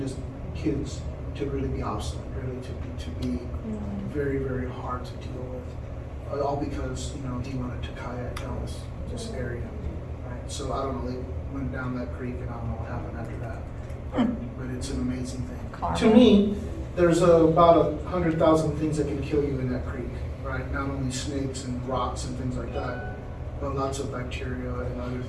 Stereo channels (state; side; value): identical; both; correlation 1.00